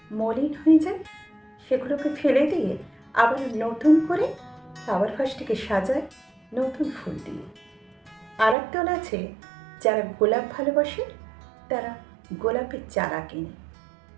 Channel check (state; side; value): drops out; left; at 8.6 s